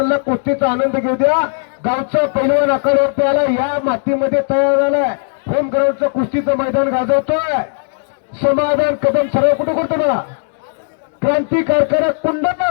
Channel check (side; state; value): right; silent; 67 dB below the other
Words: कुस्तीचा आनंद घेऊ द्या. गावचा पैलवान आखाड्यावरती आला, या मातीमध्ये तयार झालाय. होम ग्राउंडचं कुस्तीचं मैदान गाजवतोय. समाधान कदम सराव कुठं करतो मला, क्रांती कारखाना